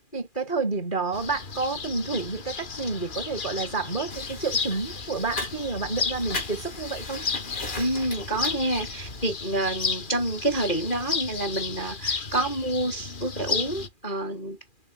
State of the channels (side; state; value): right; late; 2.4 ms